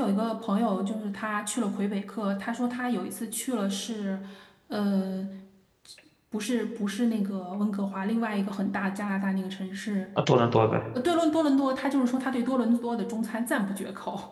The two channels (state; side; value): identical; both; correlation 1.00